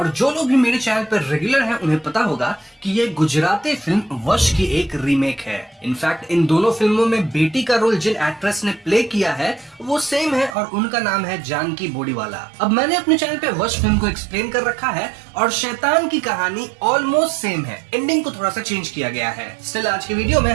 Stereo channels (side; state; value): left; drops out; at 10.6 s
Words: जो लोग भी मेरे चैनल पर रेगुलर हैं उन्हें पता होगा कि ये गुजराती फिल्म वश की एक रीमेक है। इनफैक्ट इन दोनों फिल्मों में बेटी का रोल जिन एक्ट्रेस ने प्ले किया है वो सेम है और उनका नाम है जानकी बोडीवाला। अब मैंने अपने चैनल पे वश फिल्म को एक्सप्लेन कर रखा है और शैतान की कहानी ऑलमोस्ट सेम है, एंडिंग को थोड़ा सा चेंज किया गया है। स्टिल आज की वीडियो में